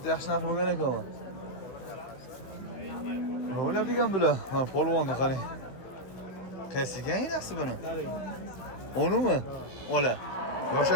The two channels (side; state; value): right; late; 16 ms